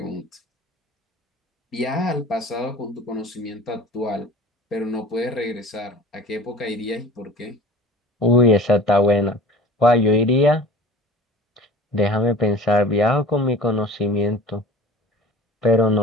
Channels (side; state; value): both; normal; correlation 0.42